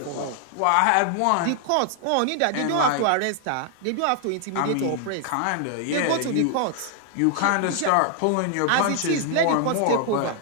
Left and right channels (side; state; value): both; different; correlation 0.00